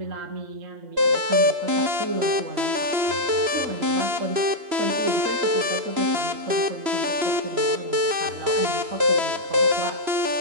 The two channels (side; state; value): left; late; 3.0 ms